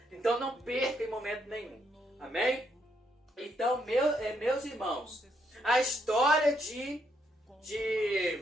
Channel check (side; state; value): both; normal; correlation 0.76